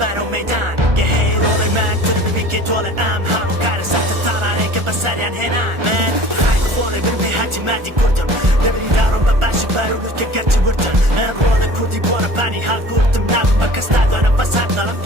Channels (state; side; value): late; left; 1.4 ms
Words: میدان یه هی رول مرد تو رو ببی که دول همون کار سخت تارانه که بسریان هنان من خیلی خوله برم به حجی مردی کردم نبری دارم بباشی برولوز که گرچه وردن من رول کردی بورا پانی حال کردم نبم بکس دادانه بس هر دارم